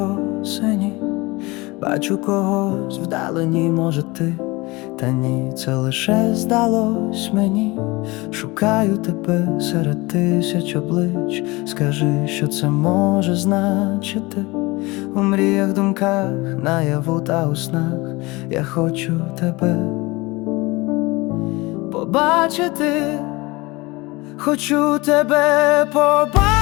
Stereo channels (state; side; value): quieter; right; 23.1 dB